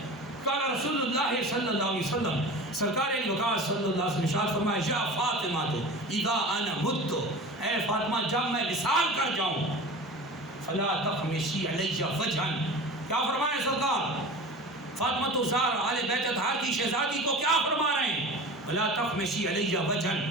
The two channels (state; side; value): normal; both; correlation 0.35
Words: قال رسول اللہ صلی اللہ علیہ وسلم، سرکار علی وقار صلی اللہ علیہ وسلم ارشاد فرمایا یا فاطمہ تو اذا انا مت، اے فاطمہ جب میں وصال کر جاؤں فلا تخمشی علی وجہا، کیا فرمایا سرکار؟ فاطمہ الزہرا آل بیت اطہار کی شہزادی کو کیا فرما رہے ہیں؟ فلا تخمشی علی وجہا،